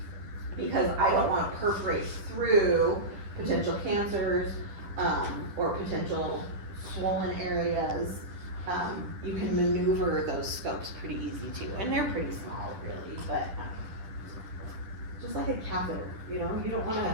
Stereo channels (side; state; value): left; late; 10 ms